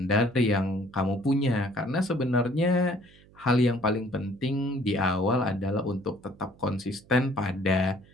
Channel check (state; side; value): noise; right; hum, 26 dB below the sound